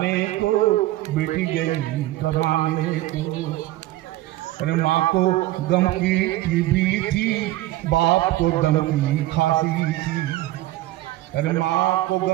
को, बेटी गई कमाने को। अरे माँ को गम की टीबी थी, बाप को दम की खांसी थी। अरे माँ को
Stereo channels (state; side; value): quieter; left; 16.5 dB